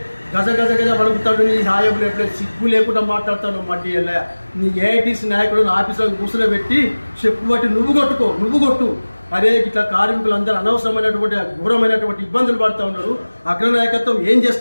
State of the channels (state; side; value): inverted; both; correlation -1.00